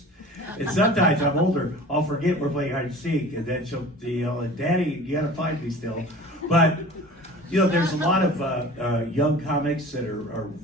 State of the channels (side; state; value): both; normal; correlation 0.41